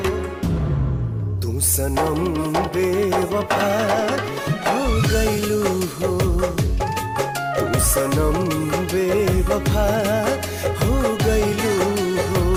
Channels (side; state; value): both; identical; correlation 1.00